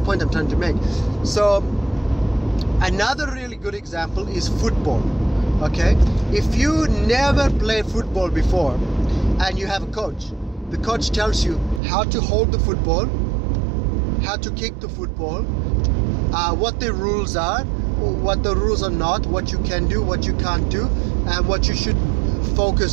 I'm trying to make. So another really good example is football. Okay, if you never played football before and you have a coach, the coach tells you how to hold the football, how to kick the football, what the rules are, what the rules are not, what you can do, what you can't do, and what you should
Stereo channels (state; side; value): drops out; left; at 11.8 s